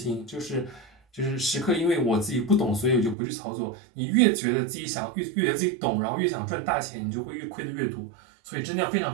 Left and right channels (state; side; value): drops out; left; at 3.2 s